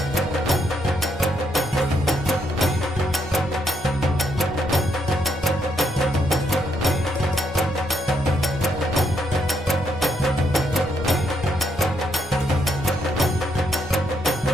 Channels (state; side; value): normal; both; correlation 0.76